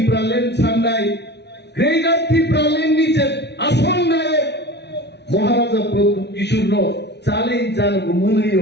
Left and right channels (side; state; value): right; late; 0.50 ms